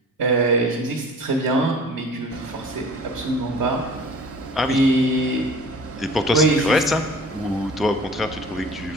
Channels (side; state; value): both; normal; correlation 0.45